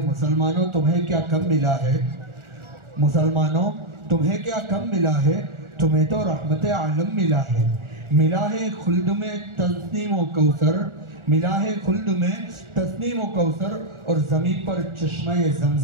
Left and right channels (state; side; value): late; left; 1.4 ms